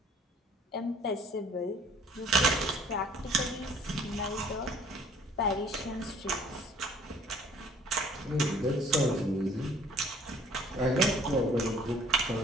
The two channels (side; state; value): both; normal; correlation 0.55